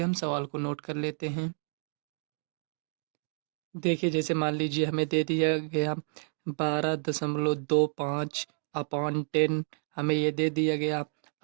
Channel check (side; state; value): left; silent; 58 dB below the other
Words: हम सवाल को नोट कर लेते हैं। देखिए, जैसे मान लीजिए हमें दे दिया गया 12.25 अपॉन 10, हमें ये दे दिया गया।